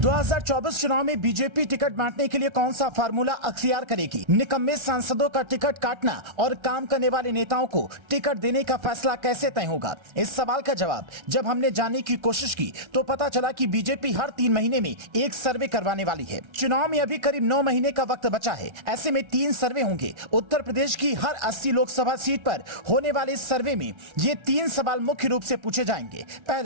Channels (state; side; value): late; left; 1.3 ms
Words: चुनाव में बीजेपी टिकट बांटने के लिए कौन सा फार्मूला अख्तियार करेगी। निकम्मे सांसदों का टिकट काटना और काम करने वाले नेताओं को टिकट देने का फैसला कैसे तय होगा। इस सवाल का जवाब जब हमने जानने की कोशिश की तो पता चला कि बीजेपी हर 3 महीने में एक सर्वे करवाने वाली है। चुनाव में अभी करीब 9 महीने का वक्त बचा है। ऐसे में 3 सर्वे होंगे। उत्तर प्रदेश की हर 80 लोकसभा सीट पर होने वाले इस सर्वे में ये 3 सवाल मुख्य रूप से पूछे जाएंगे।